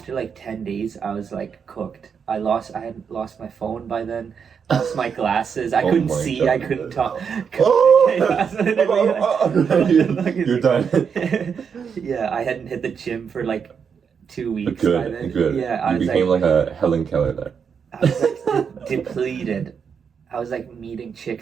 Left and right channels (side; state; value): left; quieter; 6.7 dB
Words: like 10 days, I was like cooked. I had lost my phone by then, lost my glasses. I couldn't see, God. I couldn't talk. You're done. Yeah, I hadn't hit the gym for like 2 weeks by then. Good. Yeah, you became like a Helen Keller there. I was like depleted. I was like meeting